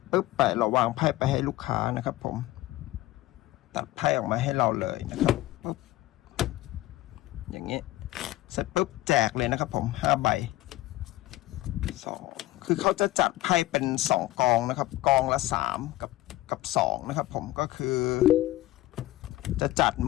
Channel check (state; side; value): quieter; right; 16.6 dB